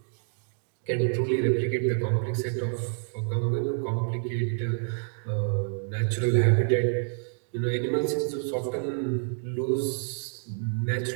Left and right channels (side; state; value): left; silent; digital silence